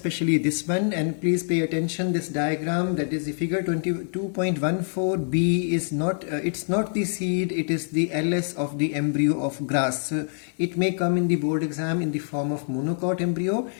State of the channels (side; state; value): right; silent; digital silence